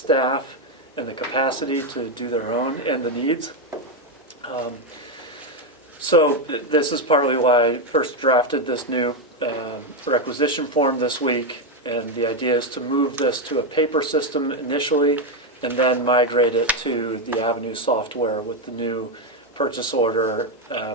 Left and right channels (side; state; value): both; normal; correlation 0.06